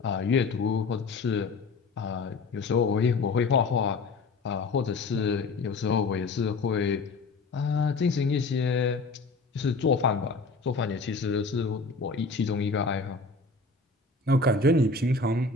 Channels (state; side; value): quieter; right; 3.9 dB